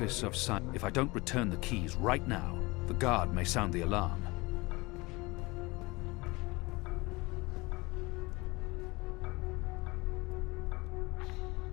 of If I don't return the keys right now, the guard may sound the alarm.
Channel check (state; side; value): quieter; right; 23.7 dB